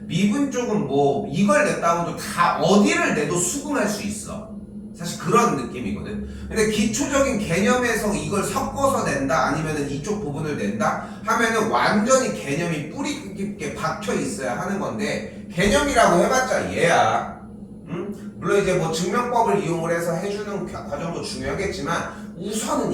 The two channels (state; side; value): identical; both; correlation 1.00